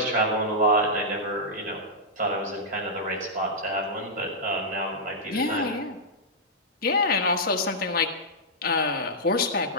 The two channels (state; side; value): normal; both; correlation -0.11